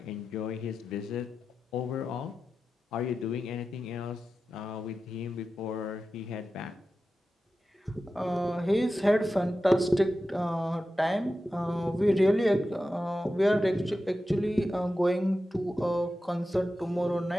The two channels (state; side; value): normal; both; correlation 0.92